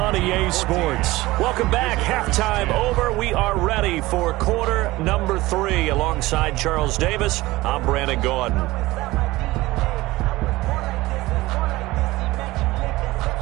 EA Sports. Welcome back. Halftime over. We are ready for quarter number 3. Alongside Charles Davis, I'm Brandon Gaudin.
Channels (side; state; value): left; quieter; 19.2 dB